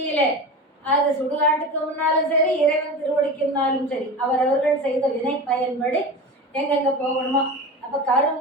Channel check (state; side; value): normal; both; correlation 0.29